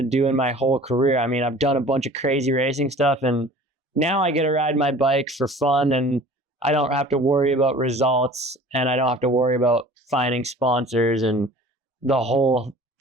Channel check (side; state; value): both; normal; correlation 0.45